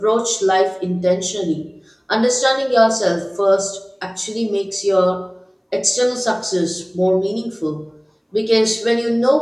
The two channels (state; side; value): identical; both; correlation 1.00